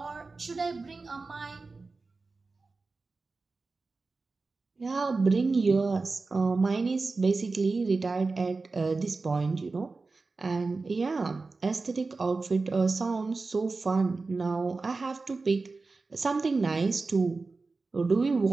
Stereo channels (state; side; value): quieter; left; 3.9 dB